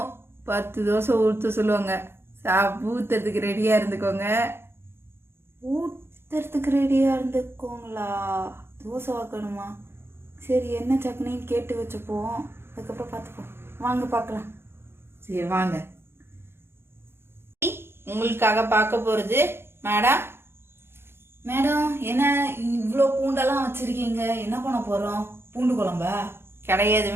10 தோசை ஊற்ற சொல்லுவாங்க. ஊத்துறதுக்கு ரெடியாக இருந்துக்கோங்க. ஊற்றுறதுக்கு ரெடியாக இருந்துக்கோங்களா? தோசை வாக்கணுமா? சரி, என்ன சட்னின்னு கேட்டு வச்சுப்போம், அதுக்கப்புறம் பார்த்துப்போம். வாங்க பார்க்கலாம். சரி வாங்க. உங்களுக்காக பார்க்க போகிறது மேடம். மேடம், என்ன இவ்வளோ பூண்டெல்லாம் வச்சுருக்கீங்க? என்ன பண்ண போகிறோம்? பூண்டு குழம்பா? கிடையாது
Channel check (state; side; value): late; left; 0.11 ms